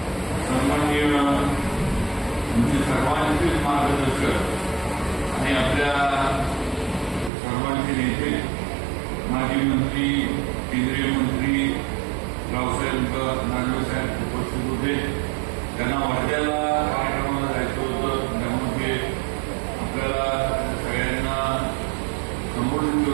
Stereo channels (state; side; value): drops out; left; at 7.3 s